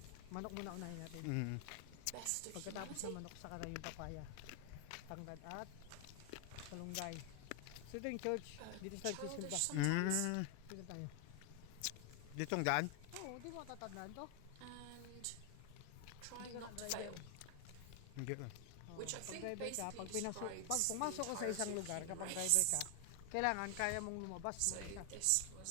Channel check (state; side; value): different; both; correlation 0.00